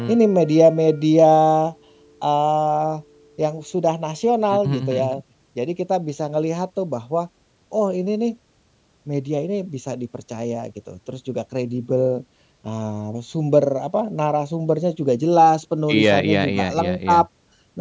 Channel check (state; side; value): identical; both; correlation 1.00